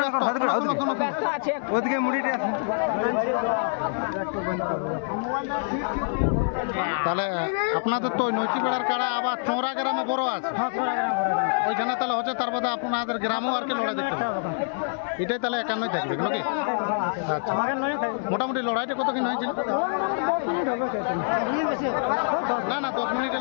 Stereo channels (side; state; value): right; silent; 61 dB below the other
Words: ব্যস্ত আছে ওদিকে মুড়িটা। তাহলে আপনাদের তো নৈচিবেড়ার কাড়া আবার চোরা গ্রামে বড় আছে। হ্যাঁ চোরা গ্রাম ওইখানে তাহলে হচ্ছে তার বাদে আপনাদের গ্রামেও আর কি লড়াই দেখতে হবে। এটাই তাহলে 51 থাকবে নাকি? আচ্ছা মোটামুটি লড়াইটা কত কিন হয়েছিল? 10 মিনিট হবে। না না 10 মিনিট